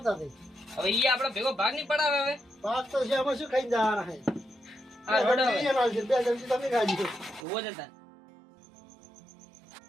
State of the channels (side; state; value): left; drops out; at 7.5 s